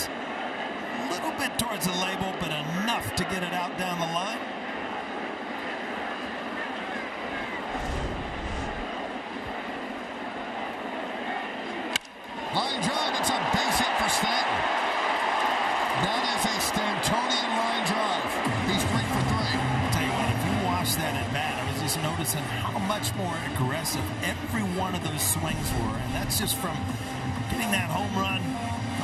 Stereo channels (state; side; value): identical; both; correlation 1.00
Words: A little bit towards the label, but enough to get it out down the line. Line drive. It's a base hit for Stanton. That is a Stantonian line drive. He's 3 for 3. Tell you what, if you watch that at bat, I was just noticing how much more aggressive every one of those swings were. And that's just from getting that home run, a